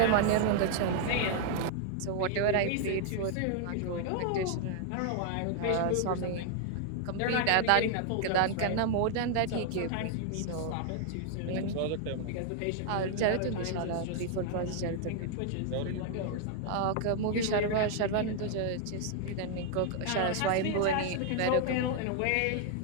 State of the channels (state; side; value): different; both; correlation 0.00